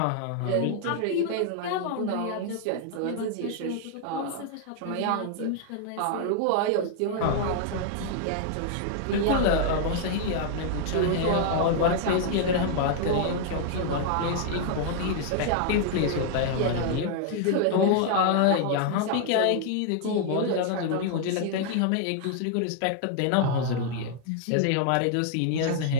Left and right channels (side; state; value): both; different; correlation 0.00